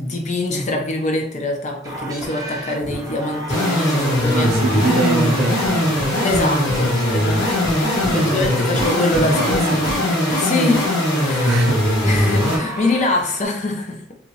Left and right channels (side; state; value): both; normal; correlation 0.56